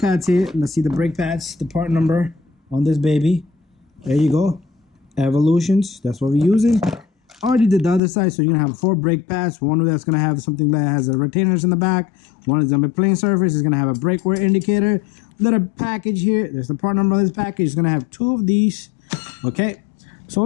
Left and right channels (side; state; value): right; drops out; at 8.0 s